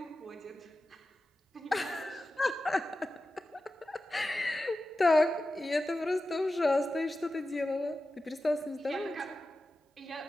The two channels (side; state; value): both; normal; correlation 0.93